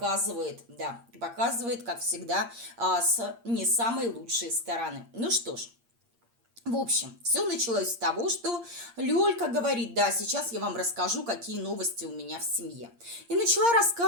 да, показывает, как всегда, с не самой лучшей стороны. Ну что ж, в общем, все началось с того, что Лёлька говорит: да, сейчас я вам расскажу, какие новости у меня в семье. И начала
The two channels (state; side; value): late; left; 8.6 ms